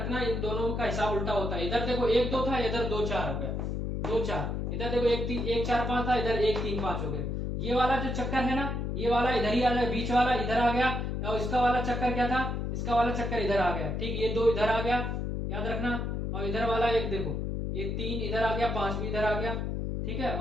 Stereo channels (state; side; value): noise; left; hum, 2 dB below the sound